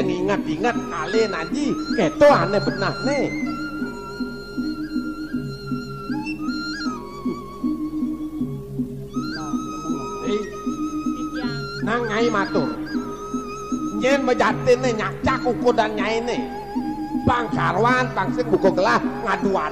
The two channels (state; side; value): identical; both; correlation 1.00